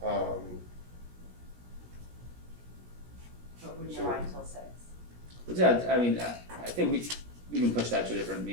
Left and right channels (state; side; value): late; left; 17 ms